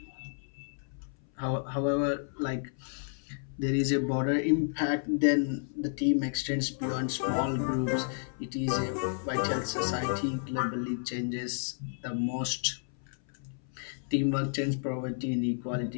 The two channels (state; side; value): silent; right; 57 dB below the other